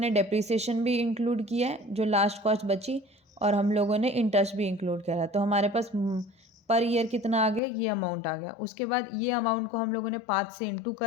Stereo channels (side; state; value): right; drops out; at 7.6 s